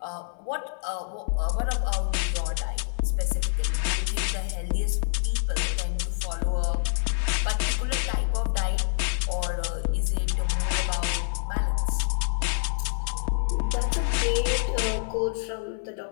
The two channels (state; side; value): silent; right; 60 dB below the other